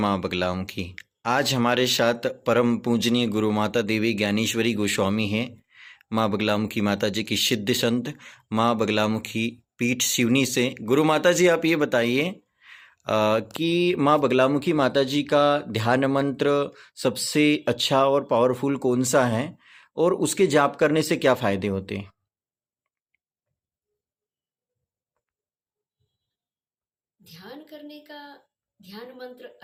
बगलामुखी। आज हमारे साथ परम पूजनीय गुरु माता देवी ज्ञानेश्वरी गोस्वामी हैं। माँ बगलामुखी माता जी की सिद्ध संत माँ बगलामुखी पीठ सिवनी से। गुरु माता जी, आप ये बताइए कि माँ बगलामुखी माता जी का ध्यान मंत्र सबसे अच्छा और पावरफुल कौन सा है और उसके जाप करने से क्या फायदे होते हैं? ध्यान करने का ध्यान मंत्र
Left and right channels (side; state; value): both; identical; correlation 1.00